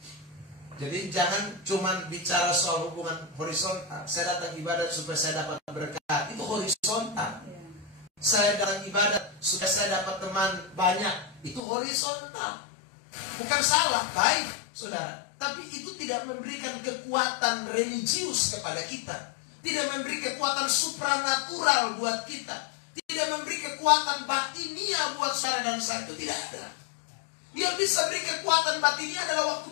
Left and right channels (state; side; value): drops out; right; at 11.6 s